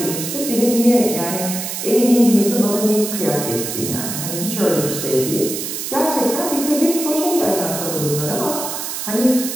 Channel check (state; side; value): noise; right; hiss, 5 dB below the sound